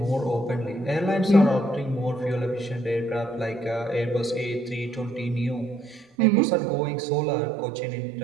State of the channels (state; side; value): drops out; left; at 6.1 s